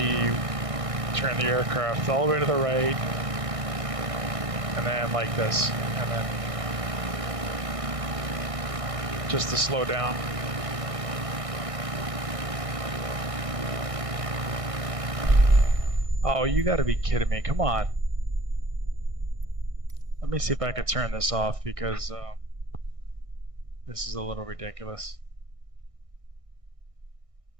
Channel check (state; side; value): late; left; 1.6 ms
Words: aircraft all the way to the right, and then like this, and then just to slow down. Oh, you gotta be kidding me! Come on. Let me see if I can turn this off because. This is a little ridiculous.